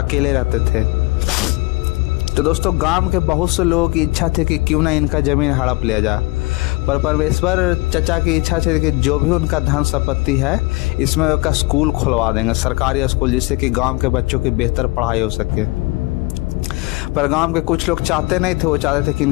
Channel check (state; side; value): quieter; right; 23.7 dB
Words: अकेले रहते थे। तो दोस्तों गांव के बहुत से लोगों की इच्छा थी कि क्यों ना इनका ज़मीन हड़प लिया जाए, पर परमेश्वर चचा की इच्छा थी कि जो भी उनका धन संपत्ति है इसमें उसका स्कूल खुलवा देंगे, सरकारी स्कूल, जिससे कि गांव के बच्चों की बेहतर पढ़ाई हो सके। पर गांव के कुछ लोग चाहते नहीं थे। वो चाहते थे कि